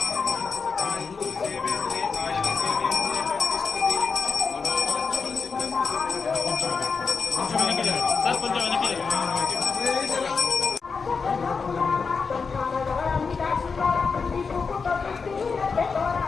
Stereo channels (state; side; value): quieter; right; 5.1 dB